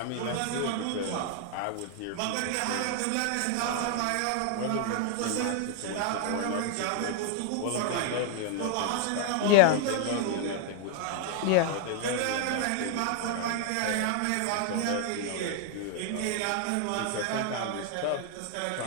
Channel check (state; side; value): different; both; correlation 0.00